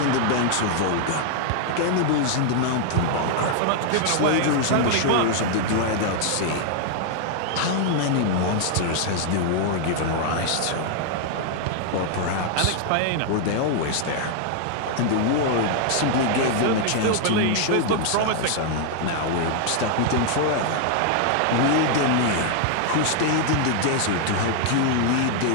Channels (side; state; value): both; different; correlation 0.00